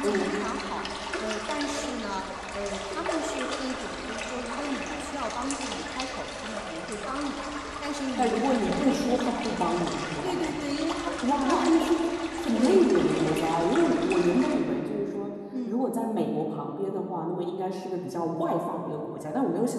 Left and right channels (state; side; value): identical; both; correlation 1.00